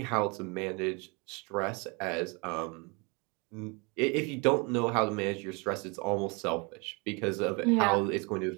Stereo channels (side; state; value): left; quieter; 30.2 dB